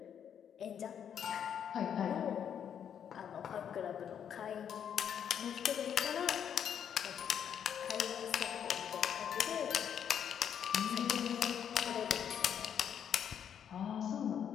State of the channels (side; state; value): right; quieter; 8.6 dB